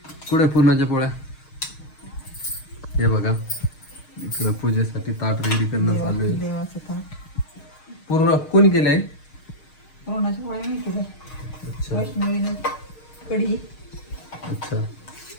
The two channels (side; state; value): right; late; 6.5 ms